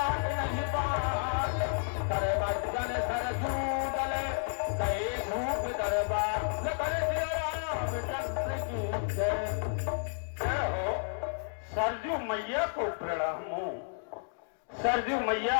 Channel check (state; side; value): silent; right; digital silence